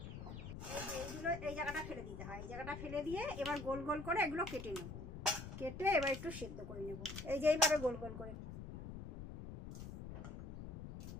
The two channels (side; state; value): left; noise; rumble, 9 dB below the sound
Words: এইগুলো এই জায়গাটা ফেলে দিতে হয়, এই জায়গাটা ফেলে দিয়ে এবার গোল গোল করে এগুলো কেটে নেব। কেটে এবার একটু সেদ্ধ করে নেব, এই যে এইভাবে গোল গোল করে।